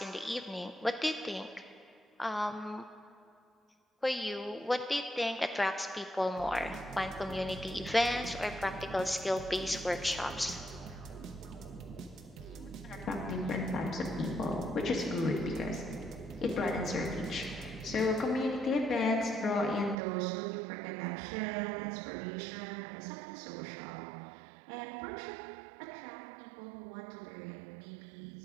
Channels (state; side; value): drops out; left; at 20.0 s